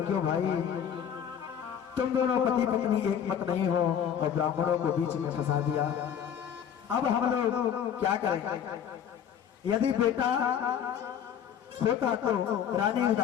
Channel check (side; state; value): right; quieter; 8.7 dB